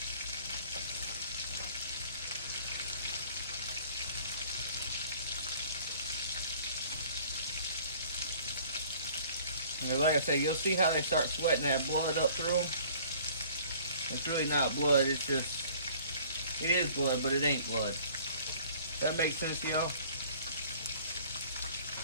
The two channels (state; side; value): inverted; both; correlation -0.52